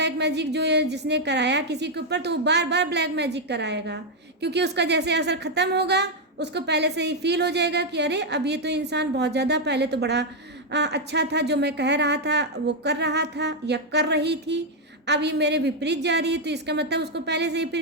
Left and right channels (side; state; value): both; normal; correlation 0.01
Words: मैजिक जो जिसने कराया किसी के ऊपर, तो वो बार बार ब्लैक मैजिक कराएगा, क्योंकि उसका जैसे असर ख़त्म होगा उसको पहले से ही फील हो जाएगा कि अरे अब ये तो इंसान बहुत ज़्यादा, पहले तो बड़ा अच्छा था, जो मैं कह रहा था वो कर रहा था या कर रही थी, अब ये मेरे विपरीत जा रही है। तो इसका मतलब उसको पहले से ही फिर